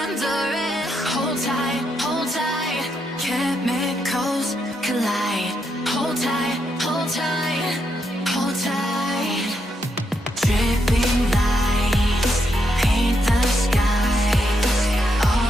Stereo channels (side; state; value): both; normal; correlation 0.80